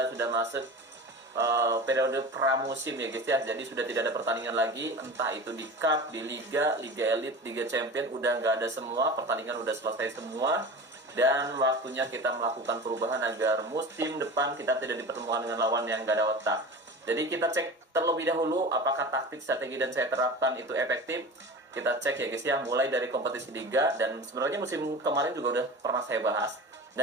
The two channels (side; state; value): both; normal; correlation 0.33